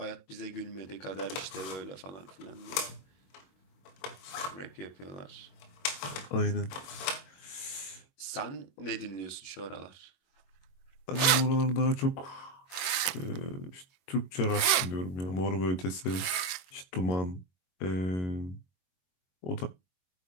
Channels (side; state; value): right; late; 21 ms